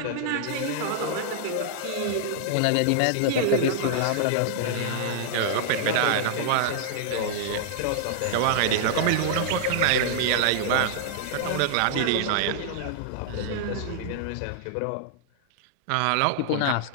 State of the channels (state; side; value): different; both; correlation -0.01